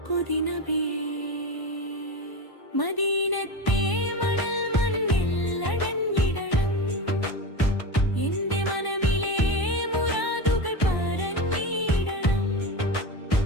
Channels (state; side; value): late; right; 1.0 ms